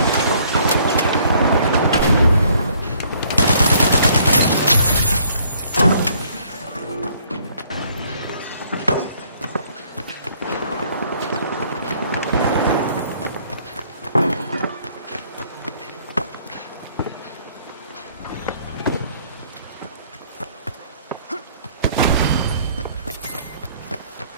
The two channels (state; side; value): inverted; both; correlation -0.62